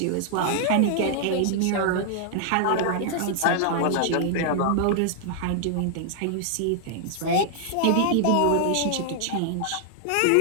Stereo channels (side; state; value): both; different; correlation -0.01